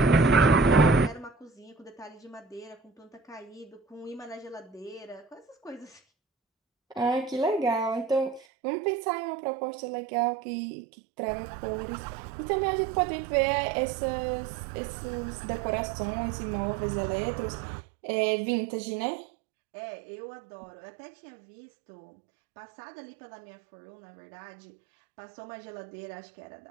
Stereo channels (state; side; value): drops out; left; at 8.5 s